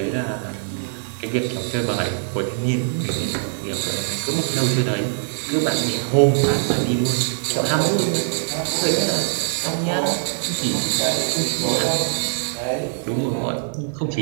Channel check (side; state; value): left; silent; digital silence